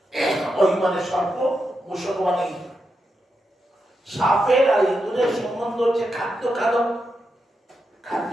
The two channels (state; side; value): normal; both; correlation 0.86